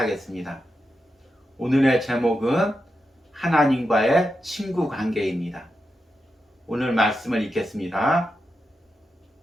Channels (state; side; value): normal; both; correlation 0.88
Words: 오늘의 제목은 하나님과의 친구 관계입니다. 오늘 말씀을 읽겠습니다.